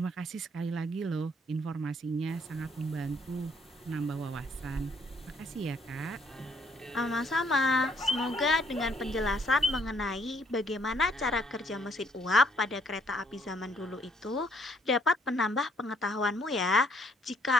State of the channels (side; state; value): both; normal; correlation 0.67